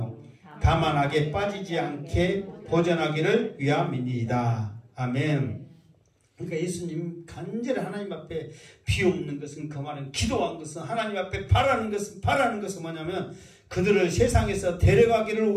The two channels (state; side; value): identical; both; correlation 1.00